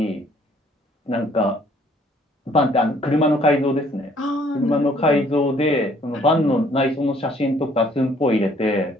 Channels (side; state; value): both; normal; correlation 0.61